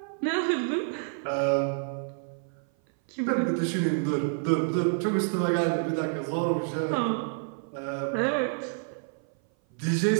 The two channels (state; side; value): silent; left; 57 dB below the other